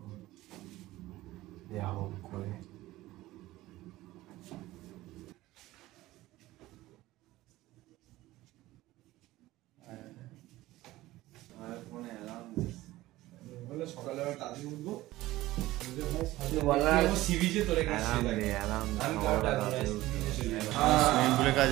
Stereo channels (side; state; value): left; quieter; 17.2 dB